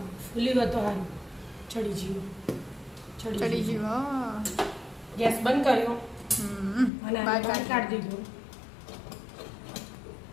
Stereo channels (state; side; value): drops out; right; at 6.9 s